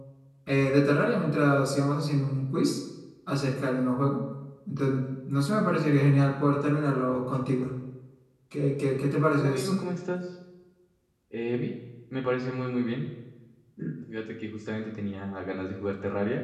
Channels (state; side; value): identical; both; correlation 1.00